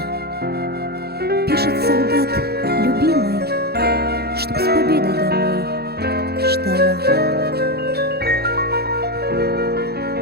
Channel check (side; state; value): left; late; 0.46 ms